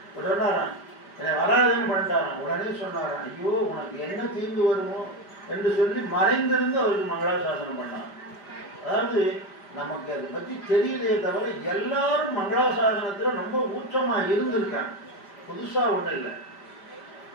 சொன்னாராம், என்னை வராதுன்னு பண்ணிட்டாராம். உடனே சொன்னாராம், ஐயோ உனக்கு என்ன தீங்கு வருமோ என்று சொல்லி மறைந்திருந்து அவருக்கு மங்களாசாசனம் பண்ணார். அதாவது நமக்கு அதை பற்றி தெரியலையே தவிர எல்லாரும் மங்களாசாசனத்தில் ரொம்ப ஊற்றமா இருந்திருக்காங்க, புதுசா ஒன்றும் இல்லை.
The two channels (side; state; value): right; late; 5.0 ms